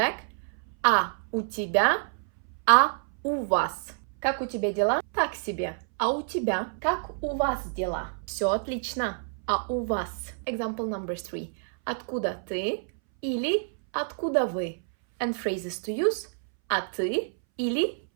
А у тебя, а у вас? Как у тебя дела? Так себе. А у тебя? Как у вас дела? Все отлично. А у вас? Example number 3. Откуда ты? Или откуда вы? And phrases to use. А ты? Или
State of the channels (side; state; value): left; silent; 59 dB below the other